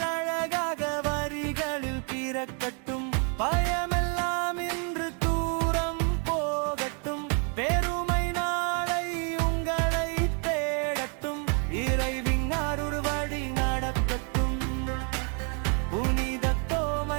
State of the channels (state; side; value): quieter; left; 38.5 dB